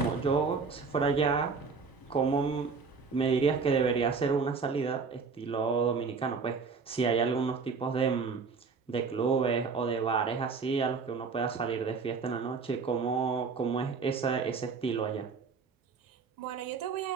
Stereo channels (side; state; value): left; quieter; 5.1 dB